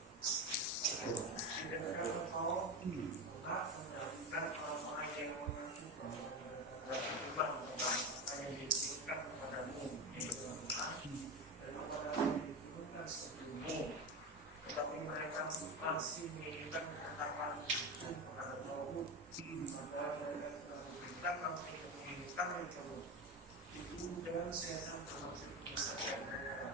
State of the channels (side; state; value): both; normal; correlation 0.19